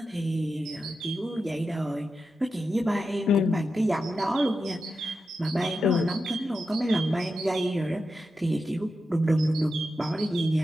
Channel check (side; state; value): both; normal; correlation 0.89